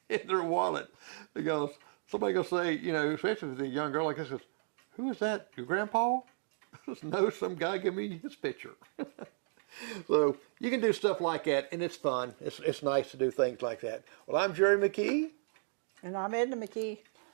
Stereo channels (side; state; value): left; silent; digital silence